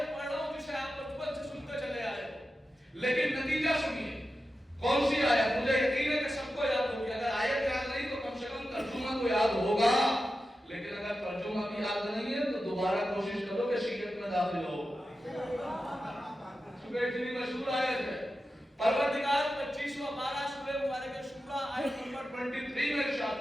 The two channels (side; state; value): both; normal; correlation 0.92